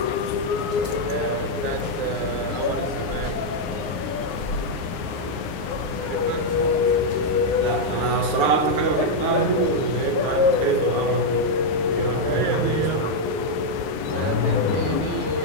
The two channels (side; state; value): left; late; 9.6 ms